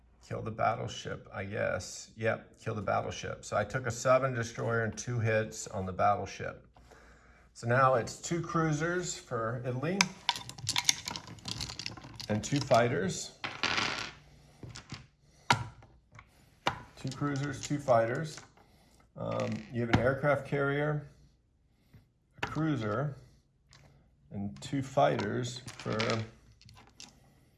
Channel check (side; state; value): both; identical; correlation 1.00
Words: kill the battleship, I guess. Yep, kill the battleship. So I took a sub and destroyer and 2 hits on the battleship. So now it's 2 cruisers for Italy and 2 fighters. 2 cruisers, 2 fighters. You have an aircraft carrier, a cruiser, and 2 fighters for